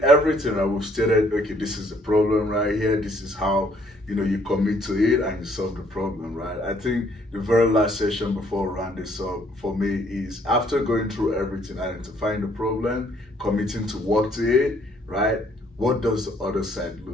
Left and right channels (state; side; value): normal; both; correlation 0.65